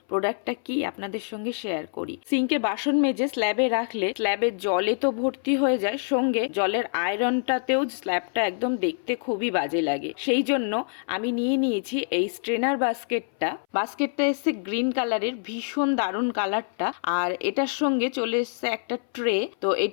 প্রোডাক্টটা কি আপনাদের সঙ্গে শেয়ার করি। সিঙ্কে বাসন মেজে স্ল্যাবে রাখলে স্ল্যাবের জলে তো ভর্তি হয়ে যায়, সঙ্গে জলের আয়রনটাতেও স্ল্যাবটা একদম দেখতে খুবই বাজে লাগে। সেই জন্য আমি নিয়ে নিয়েছি এই স্ট্রেনার বাস্কেটটা এসছে গ্রিন কালারের, ভীষণ দারুণ কালারটা। আর এটার সঙ্গে চলে এসছে একটা ট্রে। তো এই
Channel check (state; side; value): silent; right; 61 dB below the other